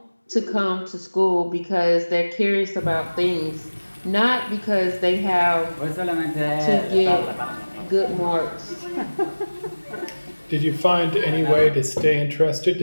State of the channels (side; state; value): both; inverted; correlation -1.00